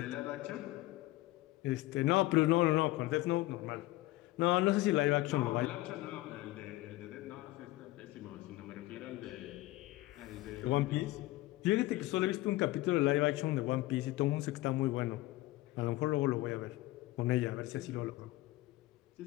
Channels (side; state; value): right; quieter; 18.1 dB